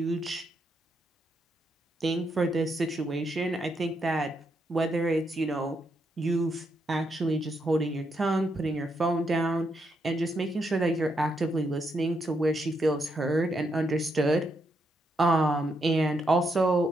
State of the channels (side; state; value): both; normal; correlation 0.80